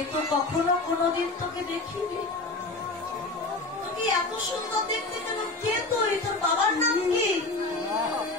তো কখনো কোনোদিন তোকে দেখিনি। তোকে এত সুন্দর দেখতে কেন? কে তুই? তোর বাবার নাম কি?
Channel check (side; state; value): right; quieter; 3.2 dB